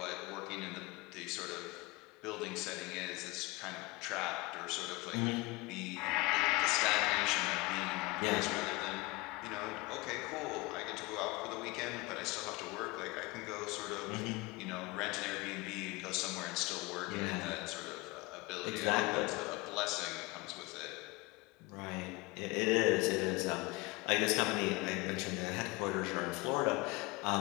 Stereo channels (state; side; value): quieter; right; 24.3 dB